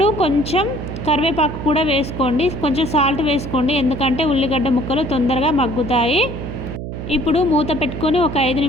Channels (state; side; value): noise; right; hum, 7 dB below the sound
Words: కొంచెం కరివేపాకు కూడా వేసుకోండి, కొంచెం సాల్ట్ వేసుకోండి, ఎందుకంటే ఉల్లిగడ్డ ముక్కలు తొందరగా మగ్గుతాయి. ఇప్పుడు మూత పెట్టుకొని ఒక 5